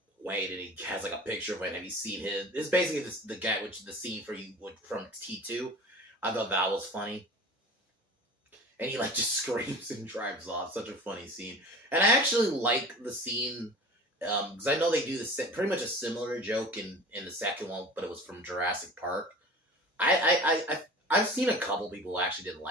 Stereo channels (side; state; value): both; normal; correlation 0.39